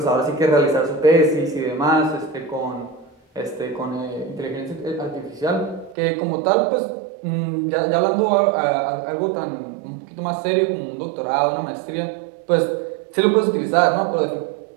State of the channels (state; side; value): drops out; left; at 6.0 s